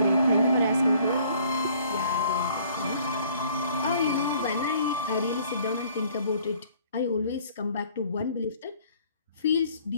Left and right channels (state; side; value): inverted; both; correlation -0.58